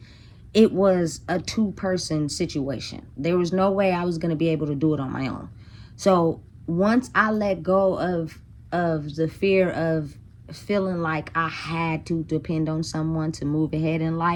it was a two-person situation. There was no way I was going to be able to do it on my own. So once I let go of the fear of feeling like I had to depend on someone to move ahead in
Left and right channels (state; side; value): identical; both; correlation 1.00